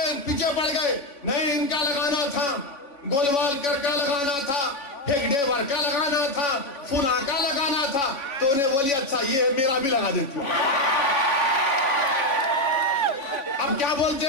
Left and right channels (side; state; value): right; late; 3.5 ms